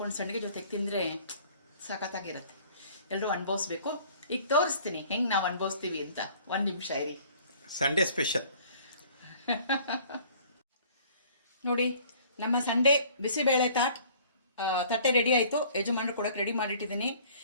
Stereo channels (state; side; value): inverted; both; correlation -0.53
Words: ಸಂಡಿಗೆ ಜೊತೆಗೆ ತಿಂದರೆ ಸಖತ್ತಾಗಿರುತ್ತೆ. ಎಲ್ಲರೂ ಅನುಭವಿಸ್ಬೇಕು. ಈಗ ತೋರಿಸ್ತೀನಿ ಹೆಂಗೆ ನಾವು ಅನುಭವಿಸ್ತೀವಿ ಅಂತ. 1 ನಿಮಿಷ ಇರಿ. ಸಂಡೇ ಸ್ಪೆಷಲ್ ನೋಡಿ, ನಮ್ಮ ಸಂಡೇ ಬಿಸಿಬೇಳೆ ತಟ್ಟೆ ರೆಡಿ ಆಯಿತು. ಯಜಮಾನರು ಕೊಡೋಕೆ ರೆಡಿ ಮಾಡಿಟ್ಟಿದ್ದೀನಿ.